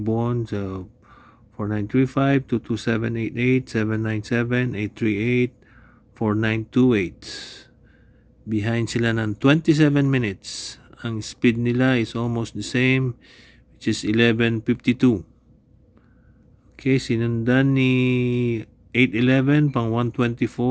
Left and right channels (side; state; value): both; identical; correlation 1.00